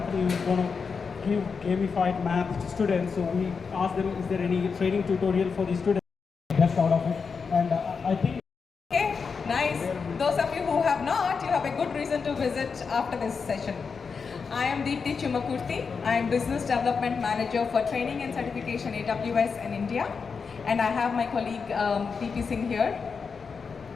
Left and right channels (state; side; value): quieter; right; 5.4 dB